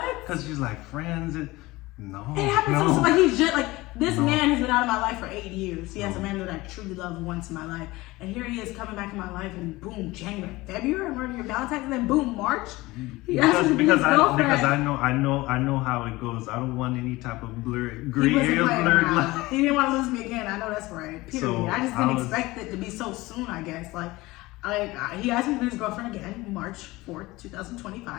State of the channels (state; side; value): quieter; right; 20.3 dB